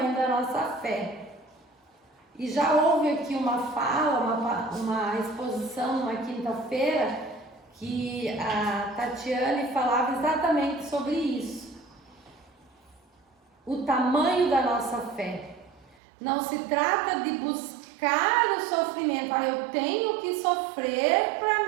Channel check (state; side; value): drops out; left; at 16.0 s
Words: da nossa fé. E já houve aqui uma fala, uma exposição numa quinta-feira, que a Tatiane falava exatamente sobre isso. O tamanho da nossa fé. Não se trata de buscar o sofrimento. Eu tenho que sofrer